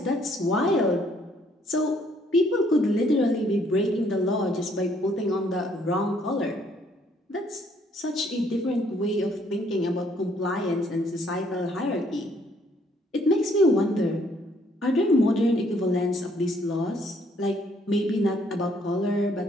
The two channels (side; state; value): both; normal; correlation 0.66